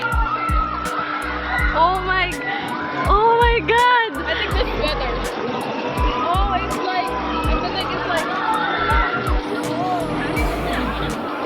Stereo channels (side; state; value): both; identical; correlation 1.00